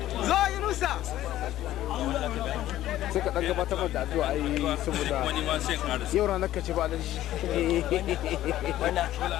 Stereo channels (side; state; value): right; quieter; 13.7 dB